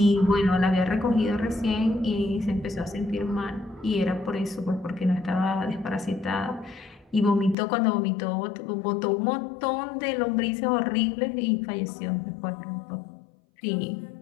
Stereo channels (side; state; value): right; drops out; at 7.6 s